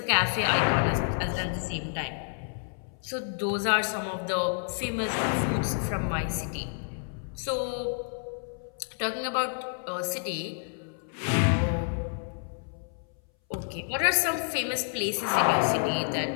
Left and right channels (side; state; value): right; silent; 58 dB below the other